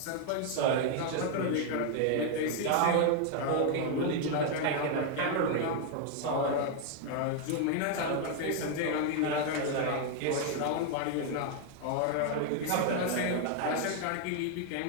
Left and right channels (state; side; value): different; both; correlation 0.00